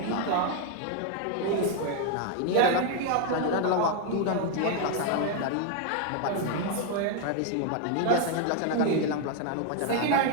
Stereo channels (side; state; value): both; different; correlation 0.01